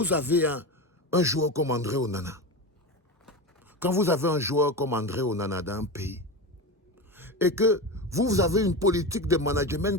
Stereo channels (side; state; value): both; normal; correlation 0.22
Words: avez un joueur comme André Onana, quand vous avez un joueur comme André Onana dans un pays, et que vous avez une politique de